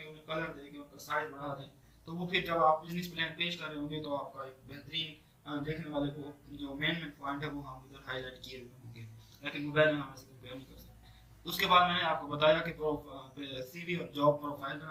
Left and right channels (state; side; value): identical; both; correlation 1.00